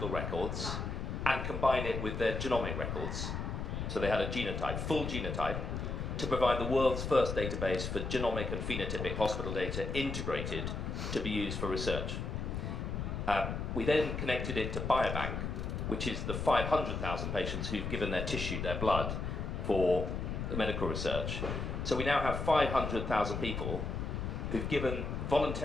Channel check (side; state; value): left; noise; rumble, 3 dB below the sound